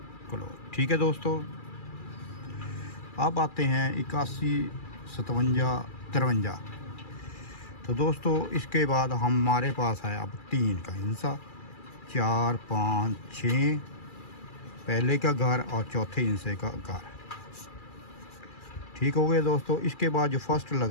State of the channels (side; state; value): right; late; 2.4 ms